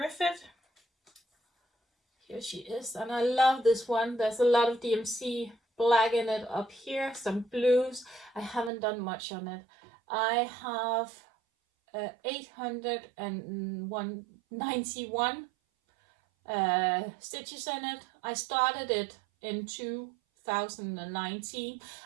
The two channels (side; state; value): left; drops out; at 8.7 s